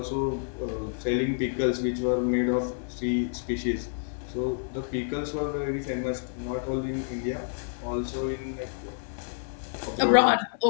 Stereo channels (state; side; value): silent; right; 59 dB below the other